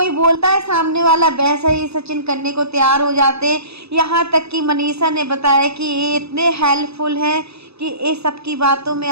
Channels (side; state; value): left; late; 0.79 ms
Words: बोलता है सामने वाला, वैसा ही सचिन करने को तैयार हो जाते हैं। यहाँ तक कि मनीषा ने बताया कि ये इतने हेल्पफुल हैं कि ये सबकी बातों में